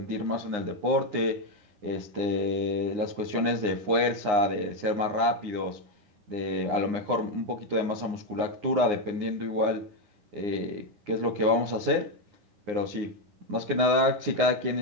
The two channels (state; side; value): late; left; 9.7 ms